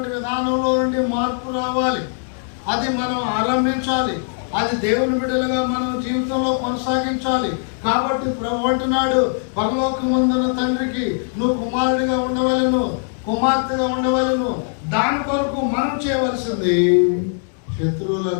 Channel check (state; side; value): silent; right; 58 dB below the other